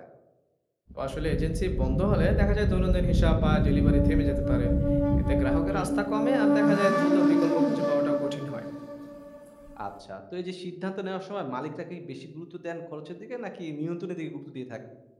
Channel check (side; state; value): both; identical; correlation 1.00